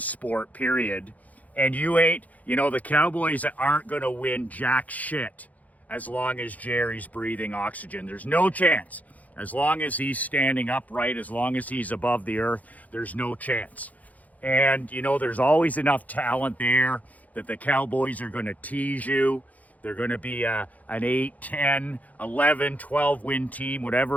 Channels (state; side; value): late; right; 0.076 ms